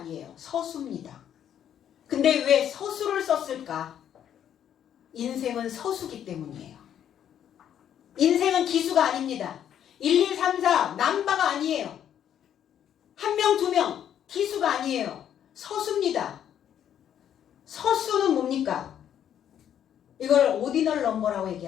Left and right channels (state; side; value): quieter; right; 9.8 dB